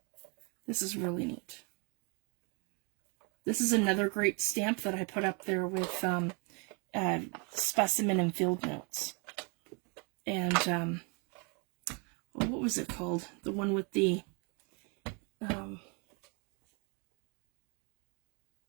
This is really neat. This is another great stamp that I put up there with specimen and field notes. And what was it called? The one with the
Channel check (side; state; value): left; quieter; 33.8 dB